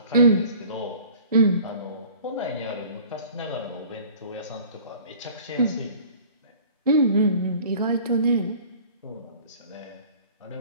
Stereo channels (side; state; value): both; inverted; correlation -0.47